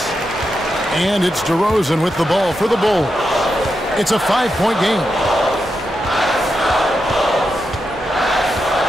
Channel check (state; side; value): normal; both; correlation 0.86